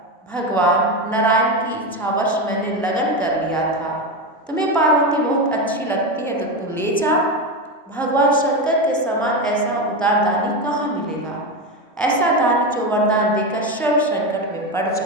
भगवान नारायण की इच्छावश मैंने लगन कर लिया था। तुम्हें पार्वती बहुत अच्छी लगती है तो तू ले जा। भगवान शंकर के समान ऐसा उदार दानी कहाँ मिलेगा, ऐसा दानी जो वरदान देकर स्वयं संकट में पड़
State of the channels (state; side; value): normal; both; correlation 0.16